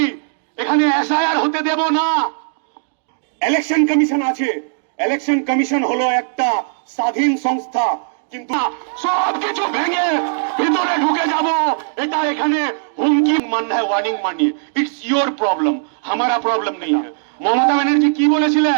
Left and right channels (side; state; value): left; silent; digital silence